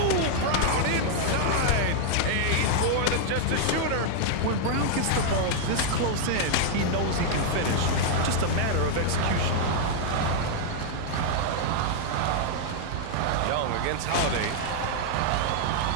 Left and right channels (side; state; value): both; different; correlation -0.01